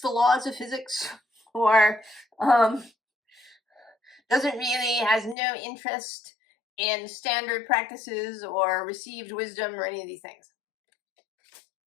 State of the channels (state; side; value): drops out; right; at 5.4 s